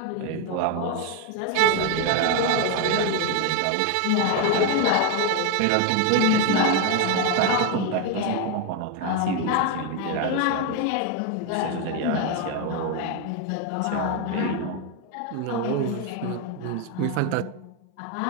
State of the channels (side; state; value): both; different; correlation 0.01